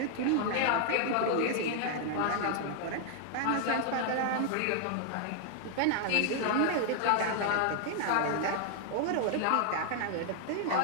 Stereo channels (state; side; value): different; both; correlation 0.00